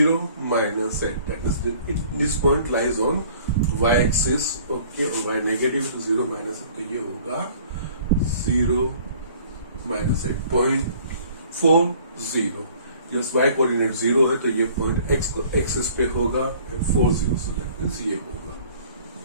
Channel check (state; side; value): inverted; both; correlation -0.53